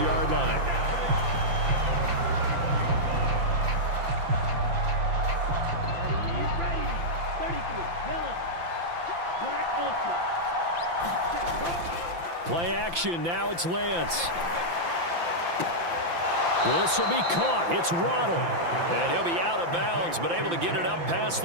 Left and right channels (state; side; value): late; left; 5.9 ms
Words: line. Play action. Now it's Lance. This will be caught. It's Waddle. And he'll be out of bounds, but able to get it up past